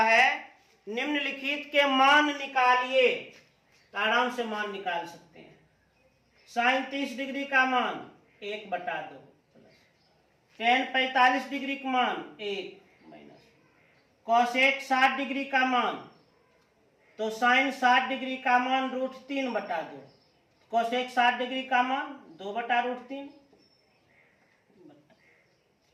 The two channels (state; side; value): identical; both; correlation 1.00